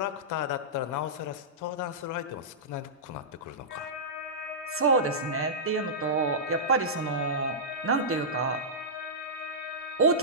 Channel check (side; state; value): both; normal; correlation -0.14